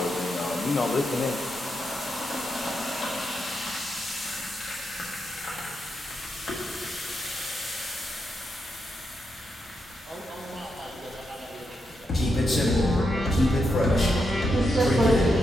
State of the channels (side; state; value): both; normal; correlation 0.83